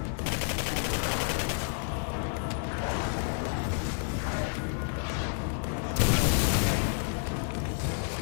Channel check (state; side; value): silent; right; 58 dB below the other